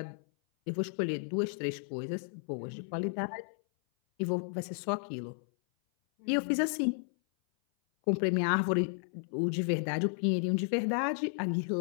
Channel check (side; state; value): right; silent; 56 dB below the other